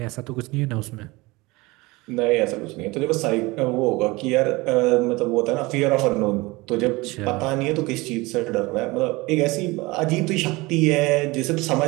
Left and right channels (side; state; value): left; quieter; 22.7 dB